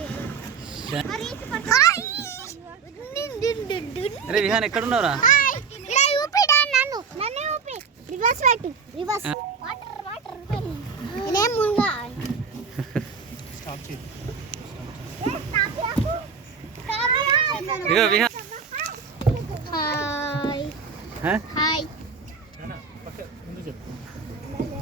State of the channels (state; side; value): quieter; left; 5.7 dB